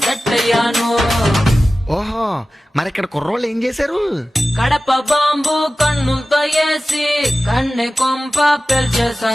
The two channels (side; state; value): both; normal; correlation 0.95